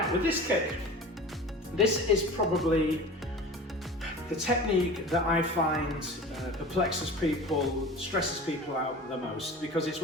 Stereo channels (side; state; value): both; normal; correlation 0.37